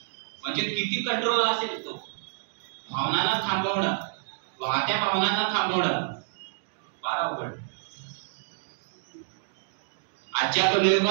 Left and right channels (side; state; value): left; silent; digital silence